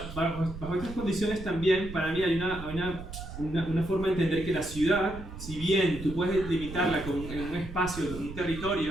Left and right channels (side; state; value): right; noise; rumble, 11 dB below the sound